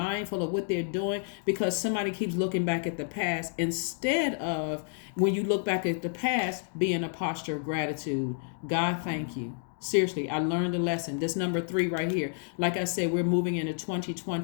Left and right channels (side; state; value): right; silent; 58 dB below the other